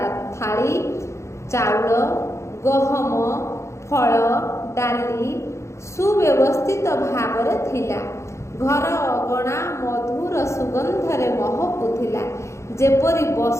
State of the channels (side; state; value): right; late; 0.14 ms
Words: ଥାଳି, ଚାଉଳ, ଗହମ, ଫଳ, ଡାଲି ସୁବ୍ୟବସ୍ଥିତ ଭାବରେ ଥିଲା। ଘର ଅଗଣା ମଧୁର ସୁଗନ୍ଧରେ ମହକୁଥିଲା, ଯେପରି